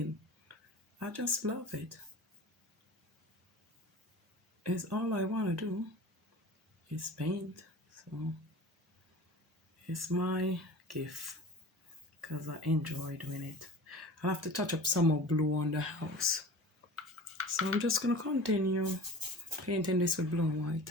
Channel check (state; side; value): normal; both; correlation 0.38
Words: I just love it. It's all I want to do is paint. So it's my gift, because I enjoy doing it. I have to touch up some more blue on the house. So I'm just going to continue painting this with blue and